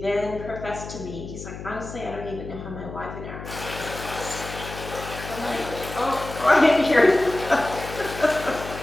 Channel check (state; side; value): noise; left; hum, 10 dB below the sound